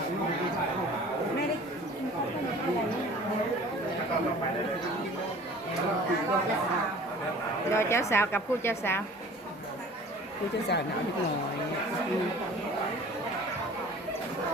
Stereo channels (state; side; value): normal; both; correlation 0.46